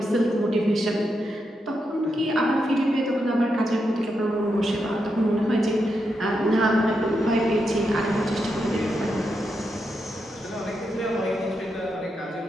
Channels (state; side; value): normal; both; correlation 0.84